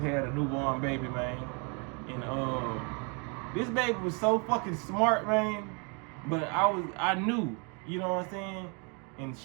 a newborn baby, man. And this baby was so fucking smart, man. But I knew, you know what I'm saying? And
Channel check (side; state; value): left; quieter; 34.7 dB